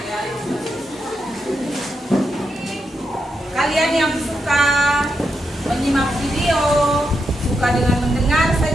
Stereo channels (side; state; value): both; normal; correlation 0.84